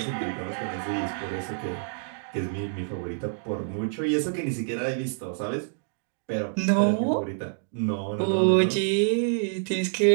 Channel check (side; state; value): left; silent; digital silence